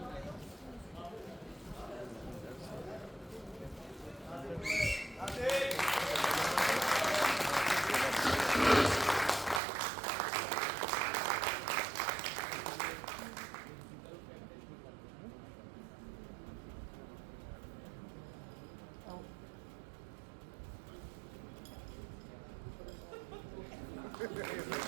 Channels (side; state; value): left; drops out; at 9.6 s